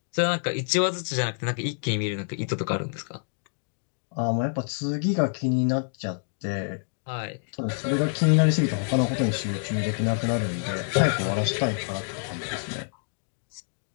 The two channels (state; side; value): silent; right; digital silence